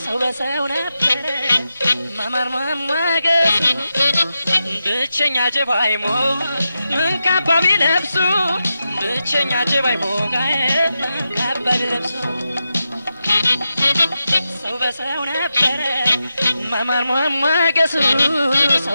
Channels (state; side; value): inverted; both; correlation -0.89